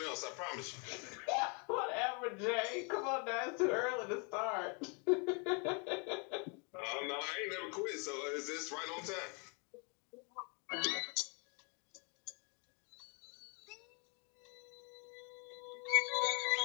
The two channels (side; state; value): right; quieter; 34.9 dB